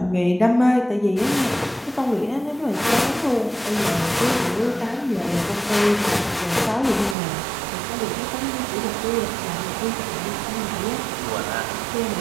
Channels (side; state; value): left; drops out; at 7.2 s